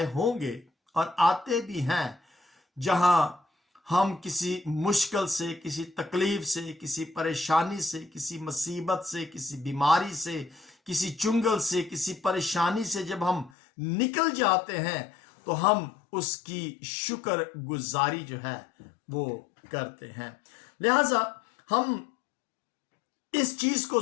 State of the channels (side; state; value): right; drops out; at 13.5 s